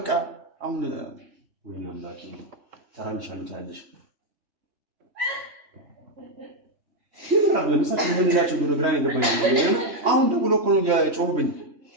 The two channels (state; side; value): late; left; 3.1 ms